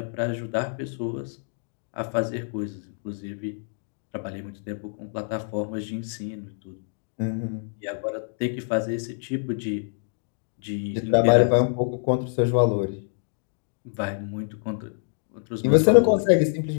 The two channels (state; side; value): silent; right; digital silence